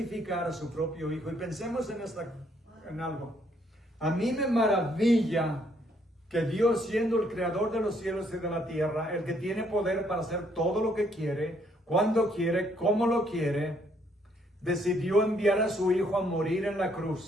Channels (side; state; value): both; normal; correlation 0.69